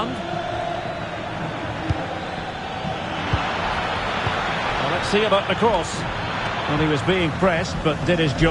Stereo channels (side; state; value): both; identical; correlation 1.00